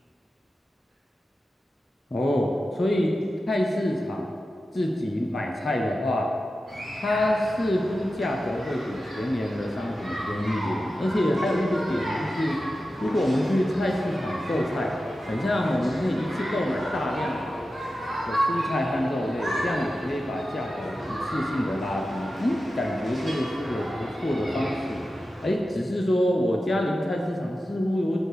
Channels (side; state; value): both; normal; correlation 0.92